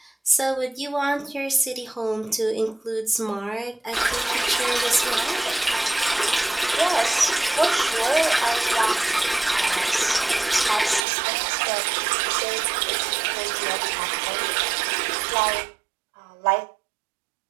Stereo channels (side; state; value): left; drops out; at 11.0 s